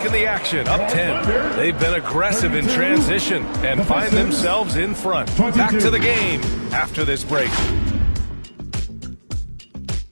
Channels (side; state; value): both; inverted; correlation -1.00